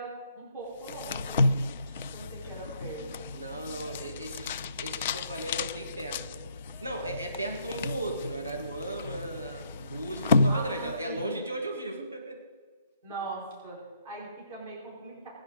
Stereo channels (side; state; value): both; inverted; correlation -0.70